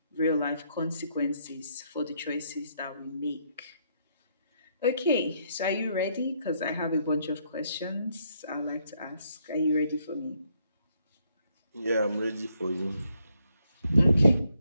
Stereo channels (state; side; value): inverted; both; correlation -0.73